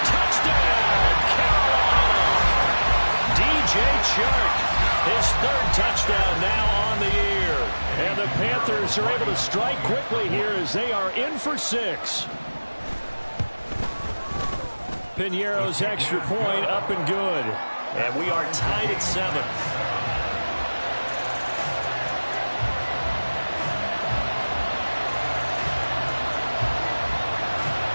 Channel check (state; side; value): inverted; both; correlation -1.00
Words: Touchdown, Carolina. DJ Chark, his 3rd touchdown now on the year. And the Panthers are able to strike quickly here as they are in for 6. Piñeiro's extra point up and good. And we are tied at 7.